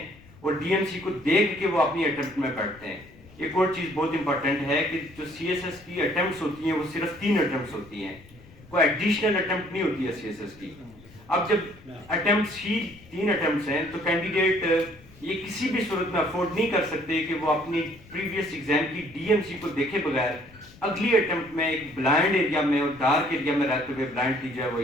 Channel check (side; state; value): left; noise; rumble, 23 dB below the sound